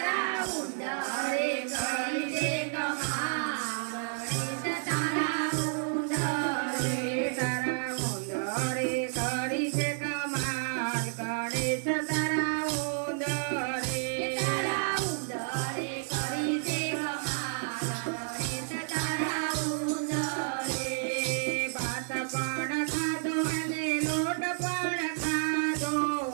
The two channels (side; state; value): left; silent; digital silence